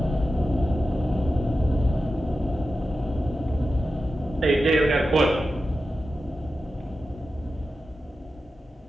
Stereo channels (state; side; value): normal; both; correlation 0.92